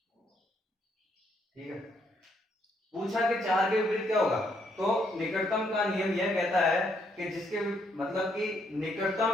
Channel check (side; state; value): both; normal; correlation 0.73